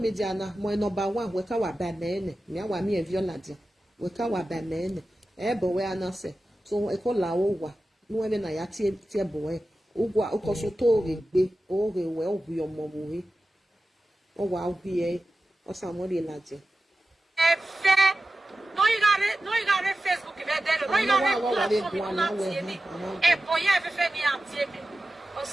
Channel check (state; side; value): normal; both; correlation 0.94